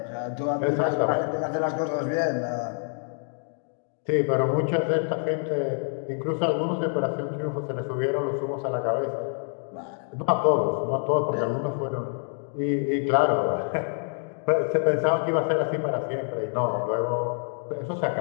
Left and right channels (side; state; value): right; silent; 60 dB below the other